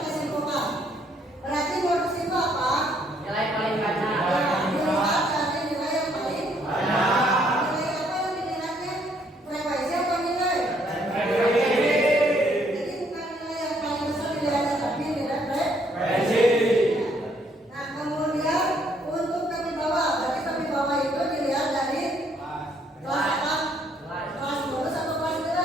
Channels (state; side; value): normal; both; correlation 0.68